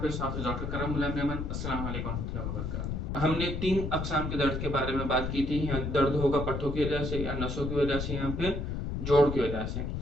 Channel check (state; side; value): noise; left; rumble, 3 dB below the sound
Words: हाफिज डॉक्टर करम गुलाम मेमन। अस्सलाम वालेकुम रहमतुल्लाहि व बरकातहू। हमने 3 अक़साम के दर्द के बारे में बात की थी। या दर्द होगा पट्टों की वजह से, या नसों की वजह से, या फिर जोड़ की वजह से।